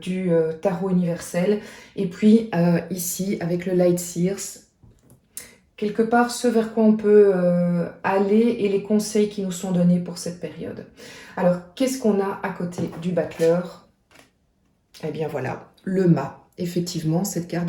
du tarot universel et puis ici avec le Light Seers, quelque part ce vers quoi on peut aller et les conseils qui nous sont donnés pour cette période. Alors, qu'est-ce qu'on a à côté du battleur? Eh bien voilà, le mât. Effectivement, cette carte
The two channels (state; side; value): identical; both; correlation 1.00